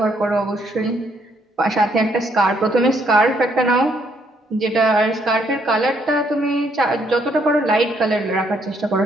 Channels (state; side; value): normal; both; correlation 0.70